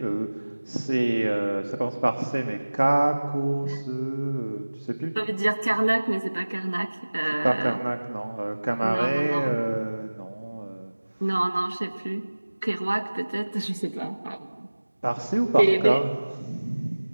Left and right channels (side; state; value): both; inverted; correlation -1.00